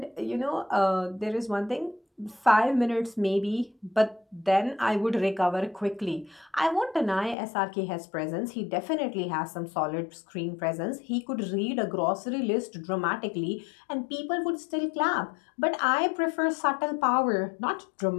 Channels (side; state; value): right; drops out; at 7.4 s